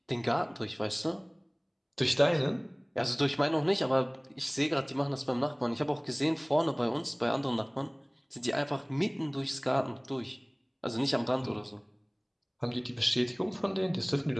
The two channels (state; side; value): identical; both; correlation 1.00